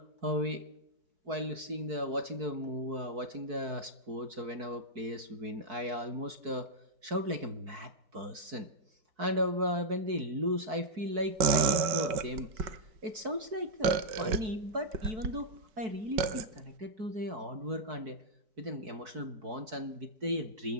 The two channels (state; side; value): late; left; 4.6 ms